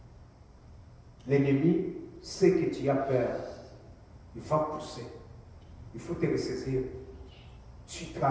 L'ennemi sait que tu as peur. Il va pousser. Il faut te ressaisir. Tu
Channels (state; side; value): identical; both; correlation 1.00